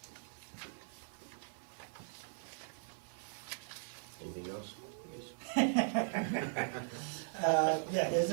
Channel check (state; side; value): silent; left; digital silence